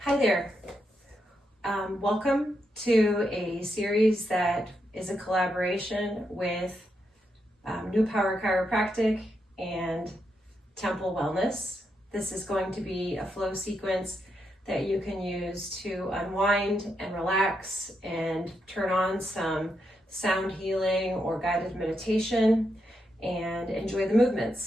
Hi there. Welcome to a series that is a collaboration with New Power Chiropractic and Templ Wellness. This is going to be a flow sequence that you can use to unwind and relax and turn on some sound healing or guided meditation and enjoy the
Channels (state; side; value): normal; both; correlation 0.82